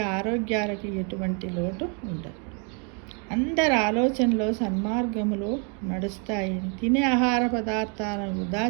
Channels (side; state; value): left; quieter; 37.9 dB